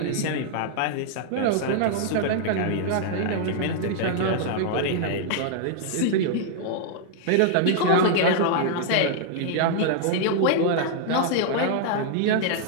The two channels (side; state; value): both; different; correlation -0.01